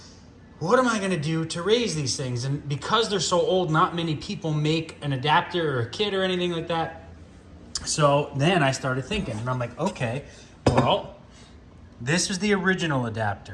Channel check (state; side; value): identical; both; correlation 1.00